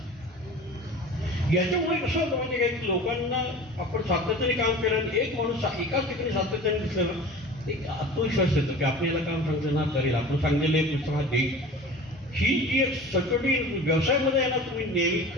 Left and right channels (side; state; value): both; normal; correlation 0.38